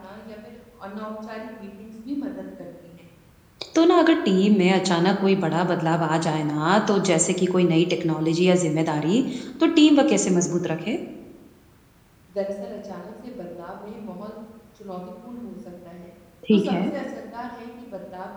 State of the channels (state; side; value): identical; both; correlation 1.00